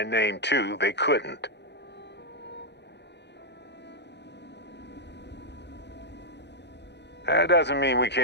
name too, they couldn't. That doesn't mean we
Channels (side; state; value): right; late; 0.50 ms